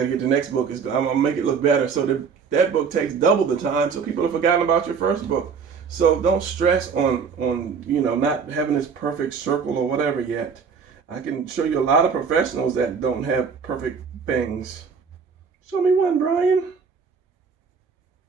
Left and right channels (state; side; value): quieter; left; 6.0 dB